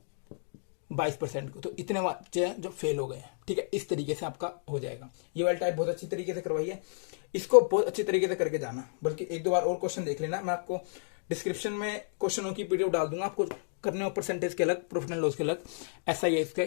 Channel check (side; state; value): right; silent; digital silence